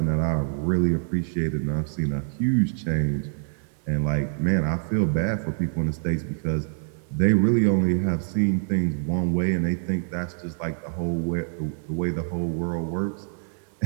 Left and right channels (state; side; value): silent; left; 60 dB below the other